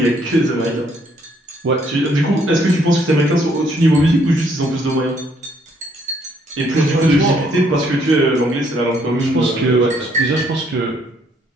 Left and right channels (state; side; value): normal; both; correlation 0.68